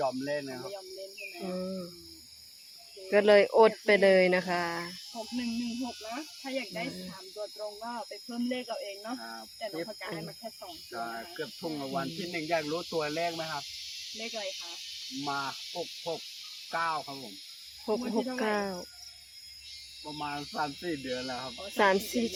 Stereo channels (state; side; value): identical; both; correlation 1.00